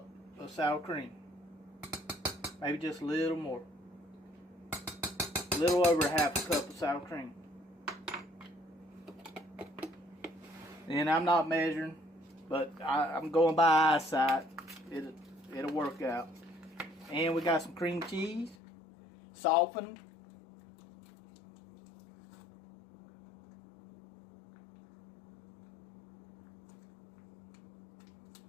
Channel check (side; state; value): right; drops out; at 18.6 s